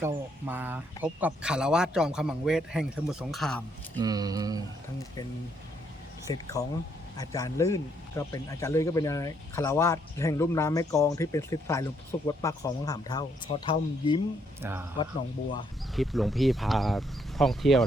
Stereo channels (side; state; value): both; normal; correlation 0.72